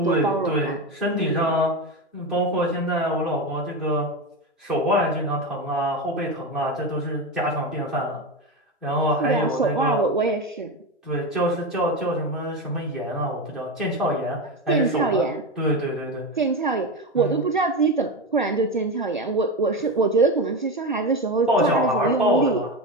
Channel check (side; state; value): both; normal; correlation 0.19